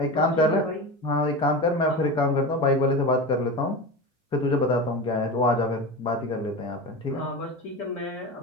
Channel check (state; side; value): normal; both; correlation 0.26